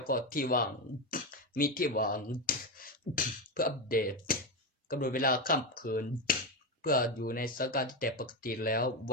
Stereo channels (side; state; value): both; normal; correlation 0.12